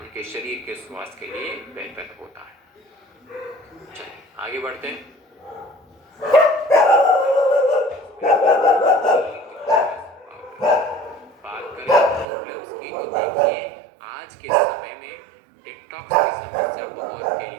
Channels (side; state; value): left; drops out; at 12.2 s